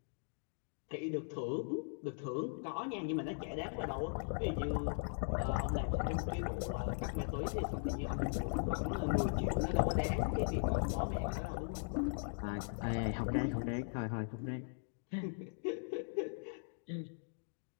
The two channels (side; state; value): right; silent; digital silence